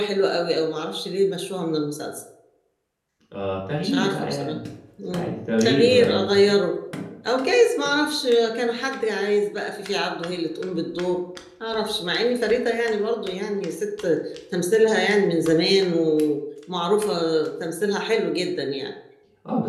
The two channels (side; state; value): both; identical; correlation 1.00